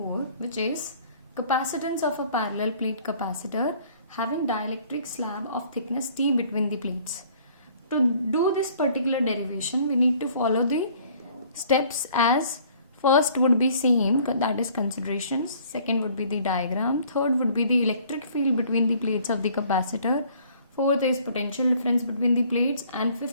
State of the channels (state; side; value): inverted; both; correlation -0.57